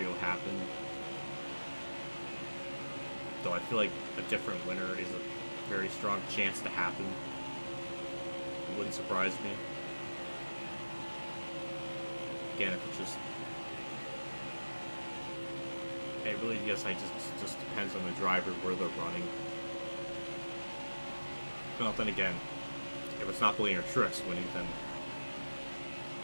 happened. Though I feel like a different winner is a very strong chance to happen. It wouldn't surprise me. Again, if it's just... It really, yes, just depends on the driver, where they're running. Well, then again, if it's not Blaine or Trix winning, then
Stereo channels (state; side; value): inverted; both; correlation -1.00